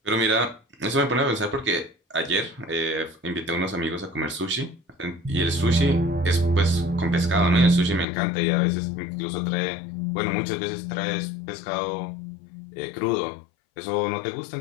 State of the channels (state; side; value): drops out; right; at 8.1 s